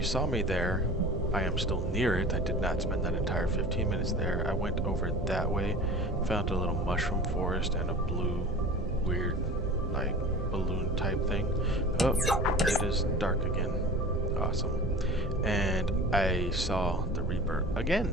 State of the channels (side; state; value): both; normal; correlation 0.38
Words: saw me there. I am still near it. I did not spend that entire 15 minutes there. I went over that way, found a little mushroom forest and a blue, weird, like, balloon type thing. Oh, it is dark again. Awesome. And I saw the Reaper again.